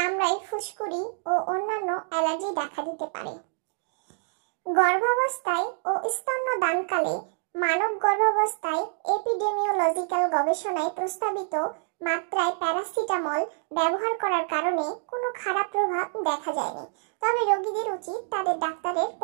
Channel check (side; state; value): left; silent; digital silence